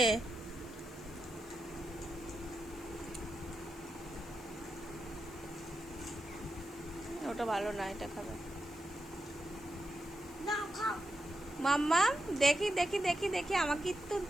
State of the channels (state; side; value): noise; left; hiss, 21 dB below the sound